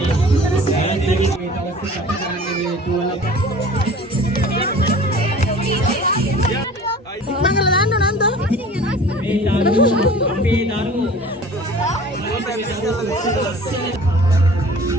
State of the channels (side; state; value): both; normal; correlation 0.44